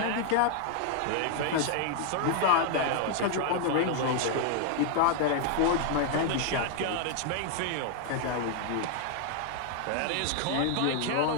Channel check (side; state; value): both; different; correlation 0.00